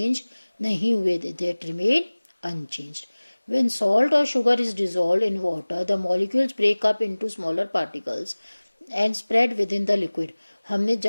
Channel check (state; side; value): inverted; both; correlation -1.00